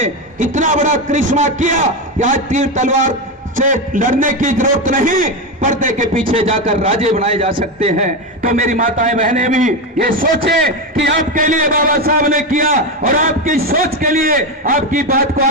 इतना बड़ा करिश्मा किया कि आज तीर तलवार से लड़ने की जरूरत नहीं, पर्दे के पीछे जाकर राजे बनाए जा सकते हैं। तो मेरी माताएं बहनें भी ये सोचें कि आपके लिए बाबा साहब ने किया, और आपकी सोच के लिए, आपकी बात को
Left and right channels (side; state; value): both; normal; correlation 0.13